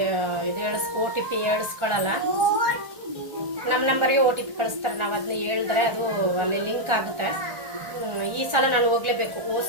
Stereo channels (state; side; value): late; left; 1.4 ms